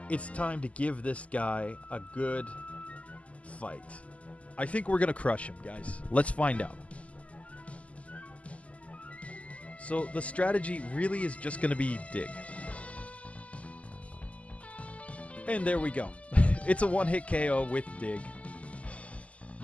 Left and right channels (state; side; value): late; right; 0.066 ms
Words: it's time to give this guy a good fight. I think we're going to crush him, guys. Let's find out. So the strategy really is just going to be dig. And there we go. It's a one-hit KO with dig.